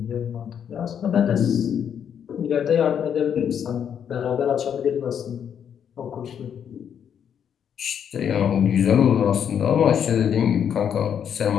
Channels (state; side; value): quieter; right; 8.4 dB